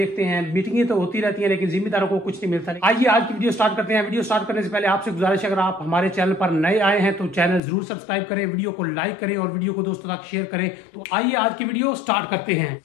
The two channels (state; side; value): drops out; right; at 7.6 s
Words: हैं। मीटिंगें तो होती रहती हैं लेकिन जिम्मेदारों को कुछ नहीं मिलता। आइए आज की वीडियो स्टार्ट करते हैं। वीडियो स्टार्ट करने से पहले आपसे गुजारिश है, अगर आप हमारे चैनल पर नए आए हैं तो चैनल जरूर सब्सक्राइब करें, वीडियो को लाइक करें और वीडियो को दोस्तों तक शेयर करें। तो आइए आज की वीडियो स्टार्ट करते हैं।